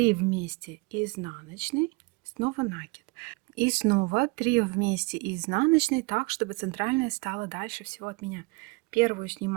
вместе изнаночной, снова накид. И снова 3 вместе изнаночной, так, чтобы центральная стала дальше всего от меня. Первую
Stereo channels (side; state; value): left; quieter; 26.9 dB